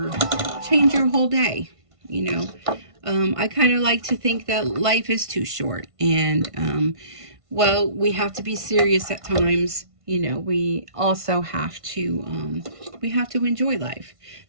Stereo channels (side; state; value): left; late; 1.5 ms